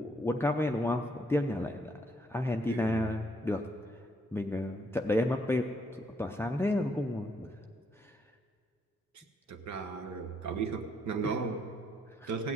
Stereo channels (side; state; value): both; normal; correlation 0.72